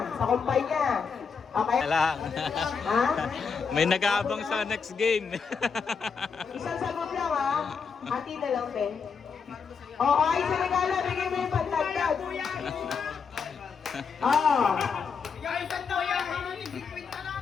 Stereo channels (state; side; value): quieter; right; 5.8 dB